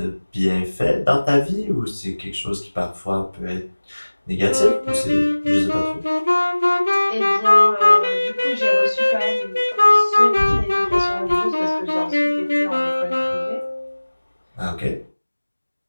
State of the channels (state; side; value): inverted; both; correlation -1.00